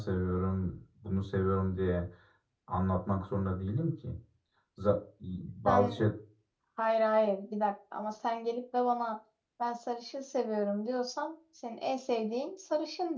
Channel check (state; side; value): identical; both; correlation 1.00